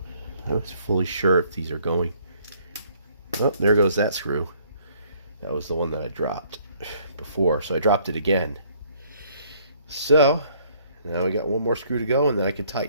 I was fully sure if these are going. Oh, there goes that screw. That was the one that I dropped before, so I dropped it again. So, now we got one more screw to go, and then I can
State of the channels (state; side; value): inverted; both; correlation -0.63